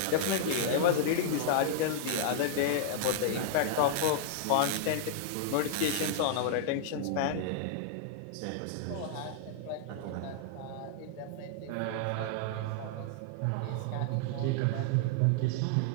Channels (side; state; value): both; different; correlation -0.01